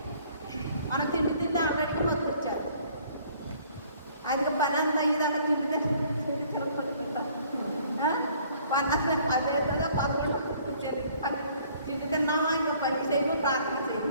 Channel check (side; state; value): both; inverted; correlation -0.58